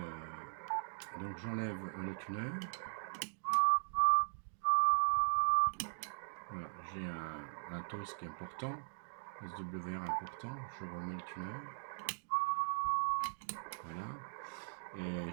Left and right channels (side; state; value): left; silent; digital silence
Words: donc j'enlève le tuner. Voilà, j'ai un toast qui est important, SWR important. Je remets le tuner. Voilà. Et